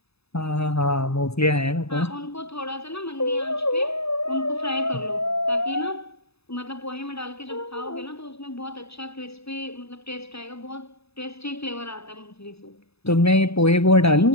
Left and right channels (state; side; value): late; right; 0.79 ms